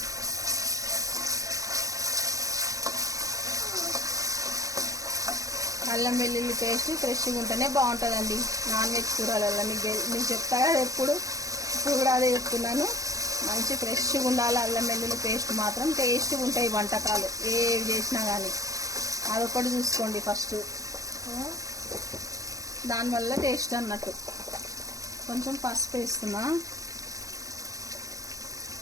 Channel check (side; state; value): left; late; 0.16 ms